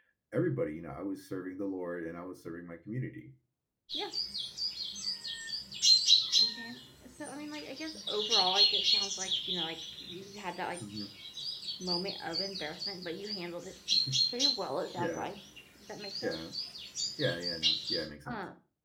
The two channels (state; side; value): identical; both; correlation 1.00